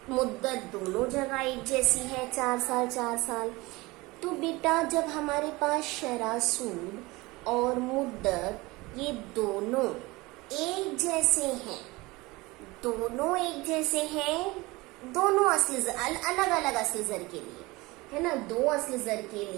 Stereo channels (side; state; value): left; quieter; 22.1 dB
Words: मुद्दत दोनों जगह एक जैसी है, 4 साल 4 साल। तो बेटा जब हमारे पास शरह सूद और मुद्दत ये दोनों एक जैसे हैं, दोनों एक जैसे हैं, दोनों असली अलग अलग असली ज़र के लिए, है ना। दो असली ज़र के